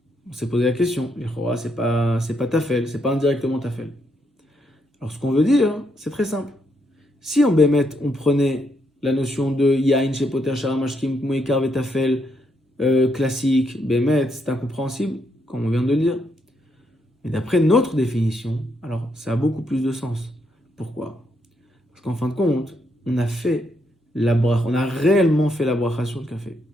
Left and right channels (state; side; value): normal; both; correlation 0.77